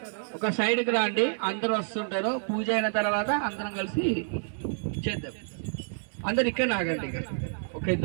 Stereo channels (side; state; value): left; silent; 59 dB below the other